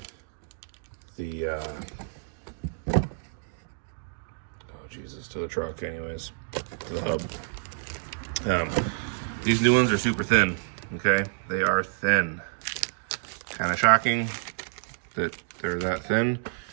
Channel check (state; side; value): silent; left; digital silence